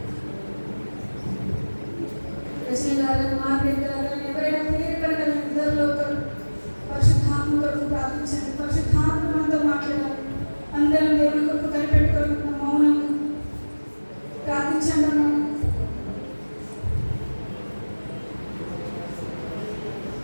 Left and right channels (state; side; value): inverted; both; correlation -1.00